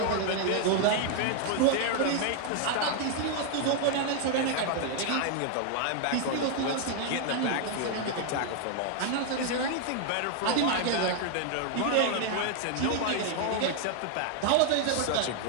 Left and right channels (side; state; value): both; different; correlation 0.00